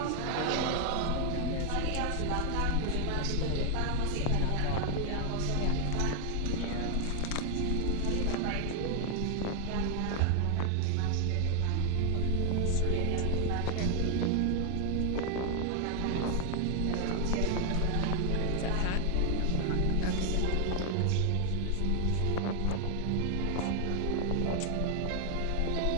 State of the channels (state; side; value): different; both; correlation 0.00